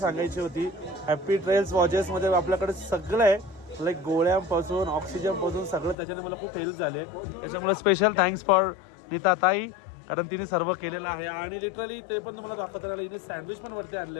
होती, हॅपी ट्रेल्स वॉचेसमध्ये आपल्याकडे सगळं आहे. लाईक गोळ्यांपासून ऑक्सिजनपासून सगळं त्याच्याने मला खूप हेल्प झाली आहे. त्याच्यामुळे स्पेशल थँक्स फॉर नीता ताई, कारण तिने सर्व केलेलं आहे. आणि लिटरली ते पण तुम्हाला दाखवता राहिलं, हिने सँडविच पण वरती आणले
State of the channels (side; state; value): right; drops out; at 6.0 s